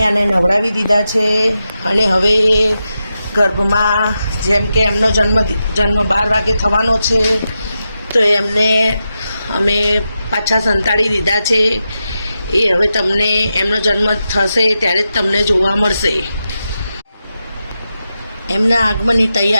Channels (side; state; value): both; inverted; correlation -0.89